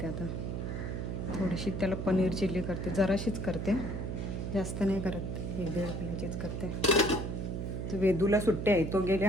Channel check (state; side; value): noise; right; hum, 3 dB below the sound